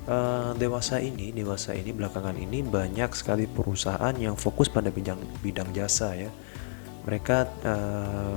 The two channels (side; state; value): right; silent; 57 dB below the other